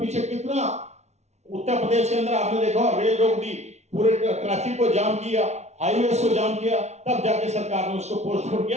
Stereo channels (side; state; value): left; late; 0.32 ms